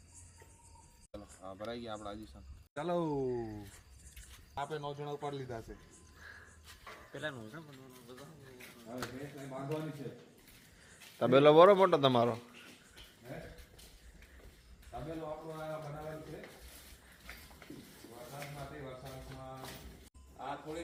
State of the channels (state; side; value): identical; both; correlation 1.00